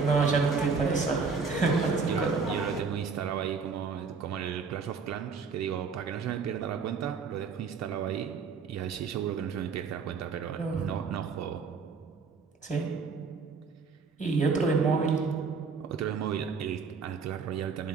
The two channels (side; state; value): left; quieter; 5.2 dB